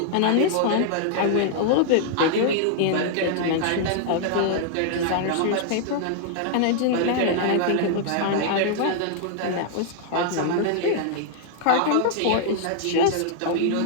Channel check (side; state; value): both; different; correlation -0.01